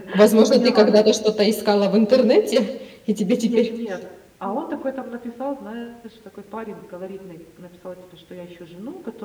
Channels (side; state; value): both; identical; correlation 1.00